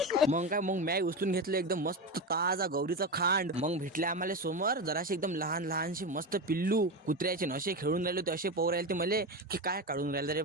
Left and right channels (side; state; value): both; normal; correlation 0.18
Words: मग काय, मग मॅ उचलून घेतलं एकदम मस्त ताजा गौरीचं खांड. मग भेटले आम्हाला समोर जराशी एकदम लहान लहानशी मस्त पिल्लू कुत्र्याचे नशे खेळून राहिले होते. असे पोर राहिले ते मले की काय काढून राहिले रे,